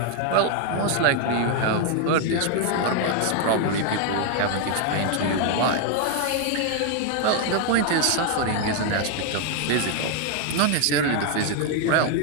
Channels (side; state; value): both; different; correlation 0.00